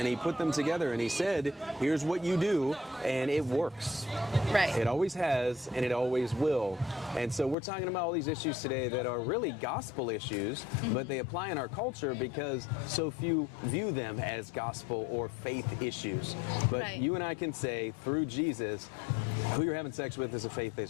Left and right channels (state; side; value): drops out; right; at 7.6 s